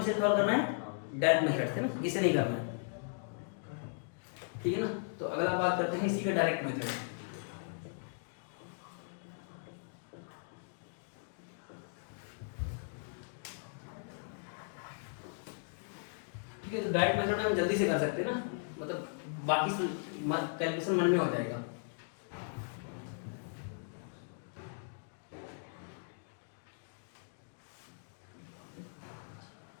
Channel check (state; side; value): silent; right; digital silence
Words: सॉल्व करना है, डायरेक्ट मेथड से ना, इसे नहीं करना है। ठीक है ना, तो अगला बात करते हैं इसी का डायरेक्ट मेथड। ठीक है, तो डायरेक्ट मेथड हम जल्दी से कर सकते हैं ना, मतलब बाकी कैलकुलेशन मन में हो जाएगा।